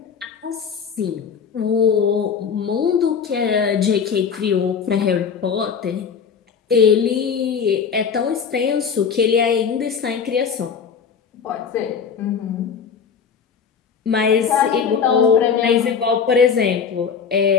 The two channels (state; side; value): quieter; right; 6.5 dB